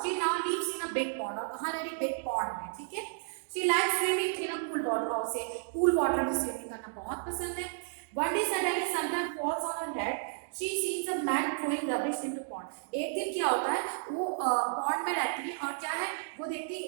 now lives in a big pond. और कहां रह रही, बिग पॉन्ड में। ठीक है, she likes swimming in a cool water. और उसे कूल वाटर में स्विमिंग करना बहुत पसंद है। One day suddenly something falls on her head. She sees a man throwing rubbish into pond. एक दिन क्या होता है, वो पॉन्ड में रहती है और क्या है, वो देखती है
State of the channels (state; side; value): silent; left; digital silence